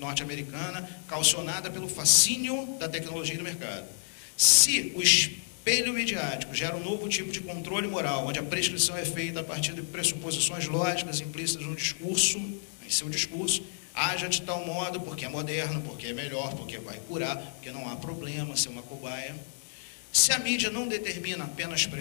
calcionada pelo fascínio da tecnologia e do mercado. Se o espelho midiático gera um novo tipo de controle moral, onde a prescrição é feita a partir de pressuposições lógicas implícitas no discurso, em seu discurso, haja de tal modo, porque é moderno, porque é melhor, porque vai curar, porque não há problema ser uma cobaia. Se a mídia não determina, apenas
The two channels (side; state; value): right; silent; 58 dB below the other